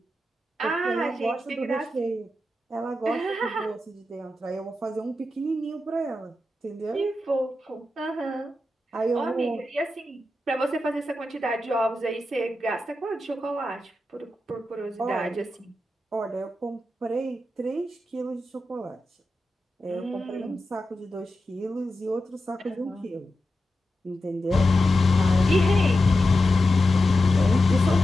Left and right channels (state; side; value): normal; both; correlation 0.90